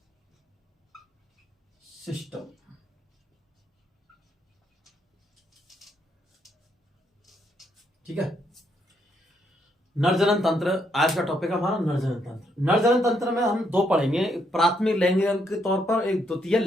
सिस्टम। ठीक है, नरजनन तंत्र आज का टॉपिक है हमारा। नरजनन तंत्र। नरजनन तंत्र में हम दो पढ़ेंगे, प्राथमिक लैंगिक अंग के तौर पर, एक द्वितीय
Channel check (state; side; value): normal; both; correlation 0.75